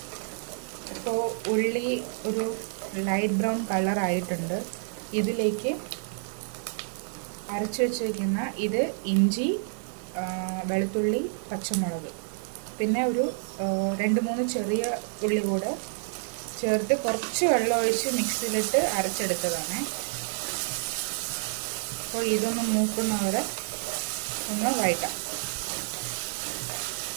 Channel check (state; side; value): silent; left; digital silence